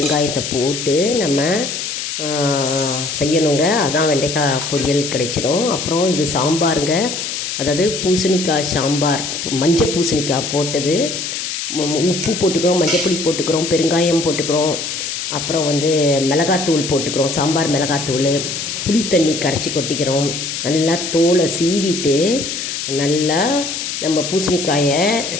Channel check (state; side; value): noise; left; hiss, 4 dB below the sound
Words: போட்டு நம்ம செய்யணுங்க. அதான் வெண்டைக்காய் பொரியல் கிடைச்சிடும். அப்புறம் இது சாம்பாருங்க, அதாவது பூசணிக்காய் சாம்பார். மஞ்சள் பூசணிக்காய் போட்டது, உப்பு போட்டுக்கிறோம், மஞ்சள் பொடி போட்டுக்கிறோம், பெருங்காயம் போட்டுக்கிறோம், அப்புறம் மிளகாத்தூள் போட்டுக்கிறோம், சாம்பார் மிளகாத்தூள், புளி தண்ணி கரைச்சி கொட்டிக்கிறோம். நல்லா தோலை சீவிட்டு நல்லா நம்ம பூசணிக்காயை